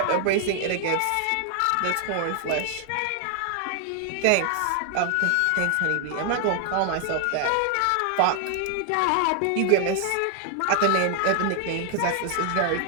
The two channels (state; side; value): different; both; correlation 0.00